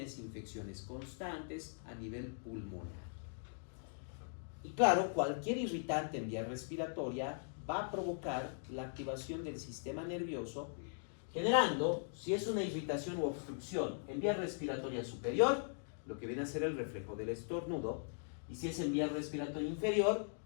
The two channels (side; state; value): right; silent; digital silence